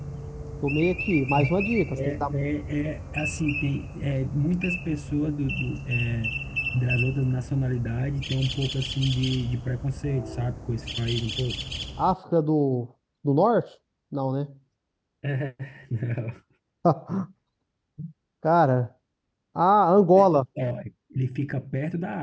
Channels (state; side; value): identical; both; correlation 1.00